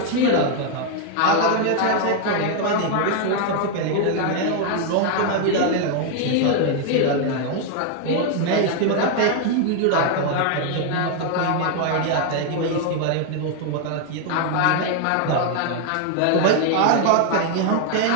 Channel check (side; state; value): both; different; correlation 0.00